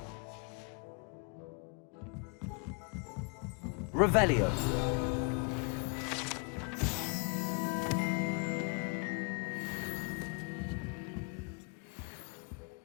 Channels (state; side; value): quieter; right; 33.1 dB